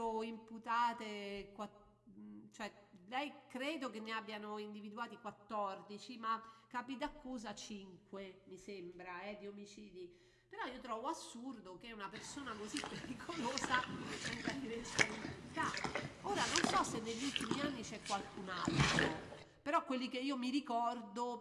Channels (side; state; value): both; identical; correlation 1.00